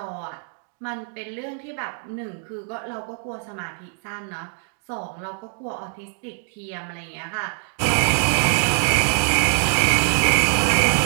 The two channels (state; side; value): silent; left; 63 dB below the other